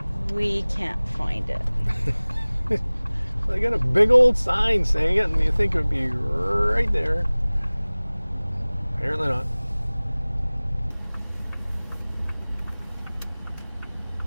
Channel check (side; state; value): both; inverted; correlation -1.00